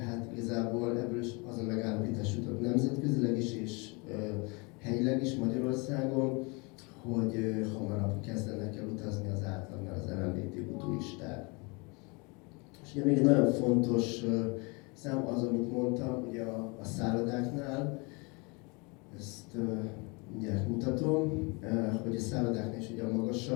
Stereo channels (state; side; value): quieter; right; 29.6 dB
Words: igazából ebből is az a megállapítás jutott nemzetközileg is és helyileg is Magyarországon, hogy hamarabb kezdenek el utazni az átlagnál az LMBTQ turisták. És ugye még egy nagyon fontos szám az, amit mondtam, ugye a szállodáknál, ezt mindjárt mutatom, hogy a szállodáknál is ugye a